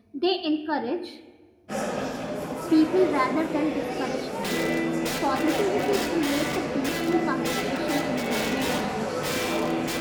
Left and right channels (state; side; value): identical; both; correlation 1.00